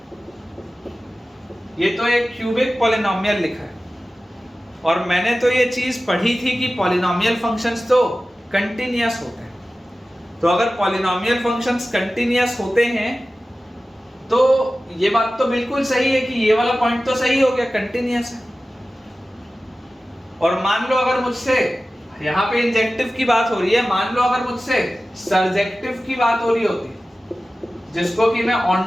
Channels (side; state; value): both; normal; correlation 0.96